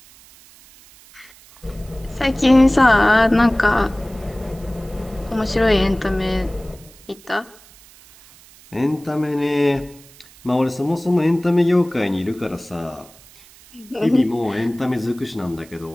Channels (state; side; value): noise; right; hiss, 24 dB below the sound